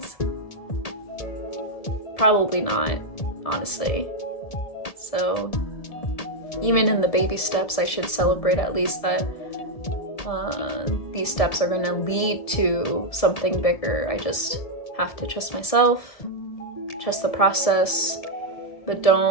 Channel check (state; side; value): late; right; 1.7 ms